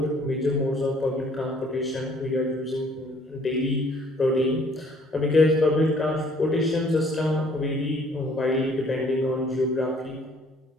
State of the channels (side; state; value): both; normal; correlation 0.60